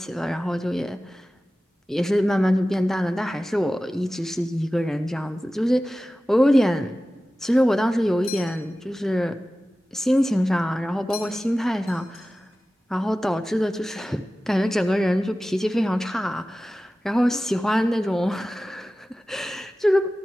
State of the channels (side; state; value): both; normal; correlation 0.95